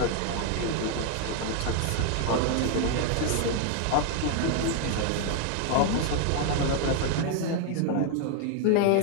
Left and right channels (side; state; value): both; different; correlation 0.00